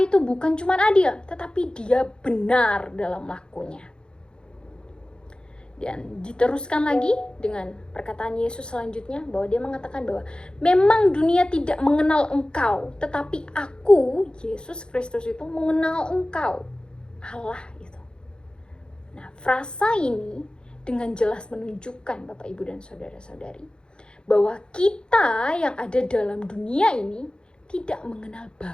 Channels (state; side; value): late; right; 0.050 ms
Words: bukan cuma adil, tetapi dia benar dalam lakunya. Dan diteruskan lagi dengan perkataan Yesus selanjutnya, bahwa dia mengatakan bahwa memang dunia tidak mengenal engkau, tetapi aku, Yesus Kristus itu mengenal engkau, Allah itu. Nah, frasa ini dengan jelas menunjukkan Bapak, Ibu, dan saudara-saudari, bahwa kita yang ada dalam dunia ini tidak mengenal